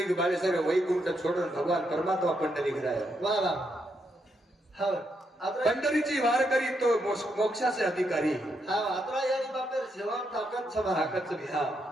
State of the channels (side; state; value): both; normal; correlation 0.79